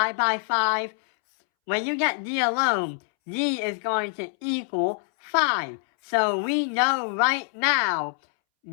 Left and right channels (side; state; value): right; silent; 62 dB below the other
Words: by 5. When you get d alone, d is going to equal 5. So we know right now